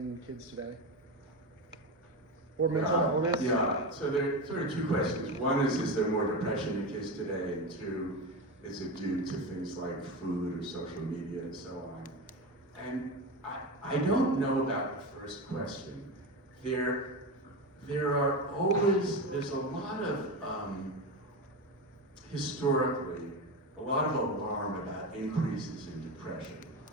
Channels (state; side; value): normal; both; correlation 0.20